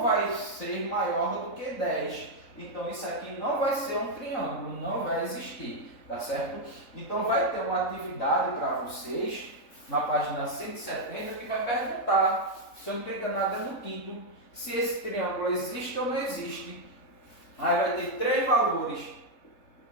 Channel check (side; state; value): right; late; 3.7 ms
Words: vai ser maior do que 10. Então isso aqui não vai ser um triângulo, não vai existir. Tá certo? Então vai ter uma atividade para vocês na página 170 que vai perguntar, se eu não estou enganado, é no quinto, se esse triângulo existe ou não existe. Aí vai ter três valores.